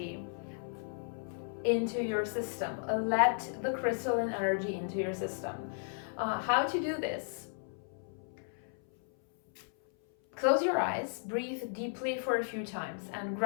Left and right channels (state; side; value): silent; right; 55 dB below the other